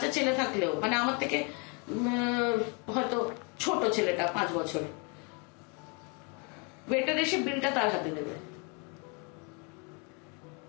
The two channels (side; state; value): right; quieter; 33.8 dB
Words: ছেলে থাকলেও, মানে আমার থেকে হয়তো ছোট ছেলেটা 5 বছরে, ওয়েটার এসে বিলটা তার হাতে দেবে।